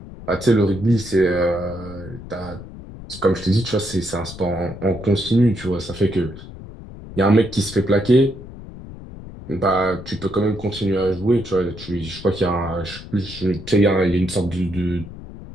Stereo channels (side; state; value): left; noise; rumble, 14 dB below the sound